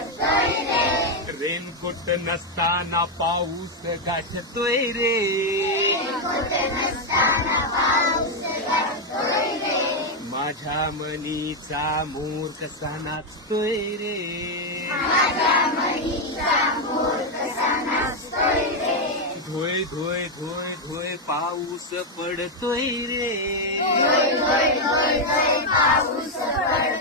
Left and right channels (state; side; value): normal; both; correlation 0.02